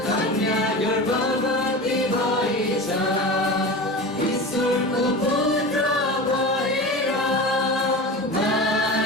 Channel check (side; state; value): both; normal; correlation 0.29